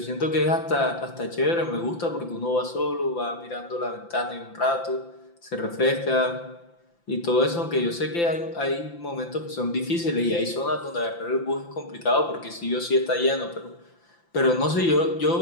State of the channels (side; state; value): right; late; 5.9 ms